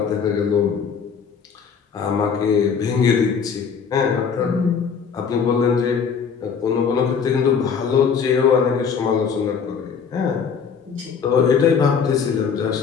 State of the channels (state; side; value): quieter; right; 6.4 dB